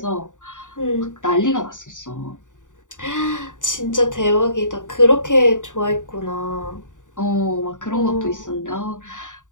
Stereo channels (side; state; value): right; late; 0.86 ms